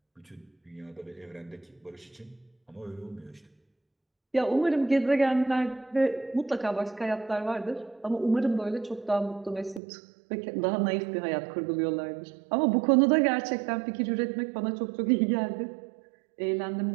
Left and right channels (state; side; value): drops out; left; at 9.8 s